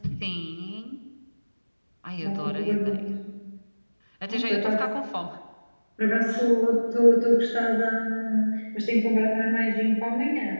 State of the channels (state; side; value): inverted; both; correlation -1.00